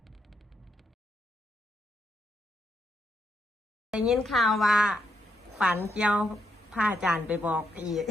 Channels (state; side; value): normal; both; correlation 0.80